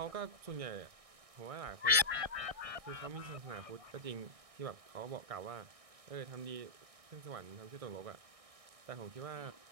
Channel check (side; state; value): left; late; 1.6 ms